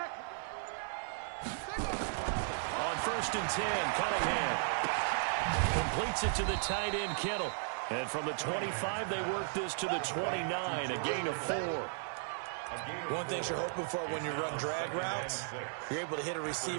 On 1st and 10, Cunningham completes it to the tight end, Kittle. And from the 25, they work this to the 29, a gain of 4. One thing you're hoping for when you run drag routes, you're able to hit a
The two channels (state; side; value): silent; left; 54 dB below the other